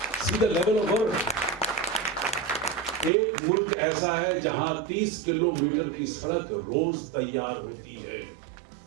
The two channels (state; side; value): drops out; left; at 3.1 s